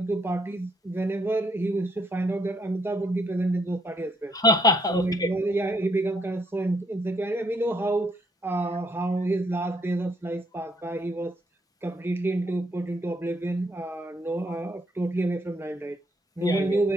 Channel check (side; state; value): both; normal; correlation 0.70